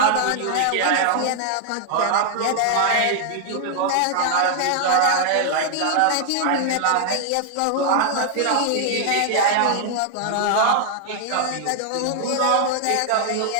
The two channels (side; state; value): both; different; correlation 0.00